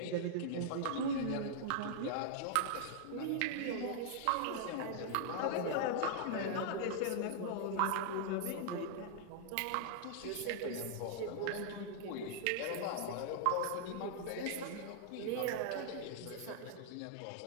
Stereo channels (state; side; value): different; both; correlation -0.01